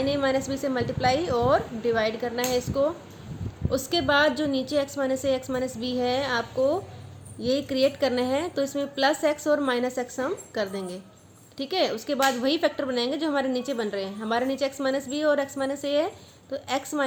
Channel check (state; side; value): identical; both; correlation 1.00